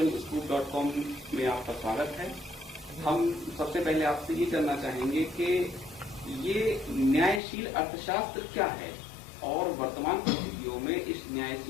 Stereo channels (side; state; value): right; drops out; at 7.4 s